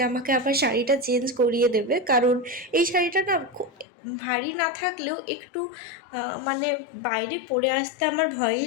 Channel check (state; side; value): drops out; right; at 3.9 s